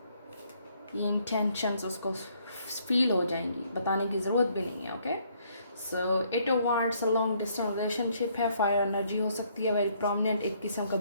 ये इंटेंशंस उसको फील हो जाएंगी, बताने की ज़रूरत भी नहीं है, okay. So it wants a long distance relationship है, फायर एनर्जी हो सकती है, वेरी प्रोमिनेंट, एक किस्म का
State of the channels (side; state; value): both; inverted; correlation -0.67